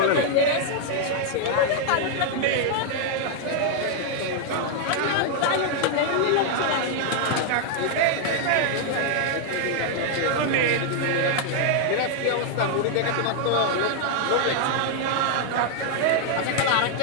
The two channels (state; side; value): different; both; correlation 0.00